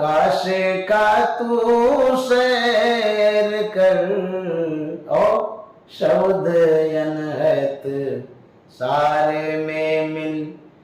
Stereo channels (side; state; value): both; identical; correlation 1.00